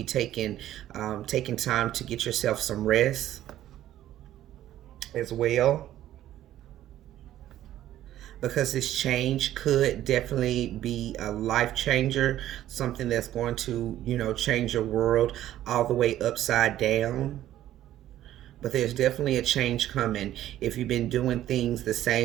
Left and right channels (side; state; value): left; quieter; 12.9 dB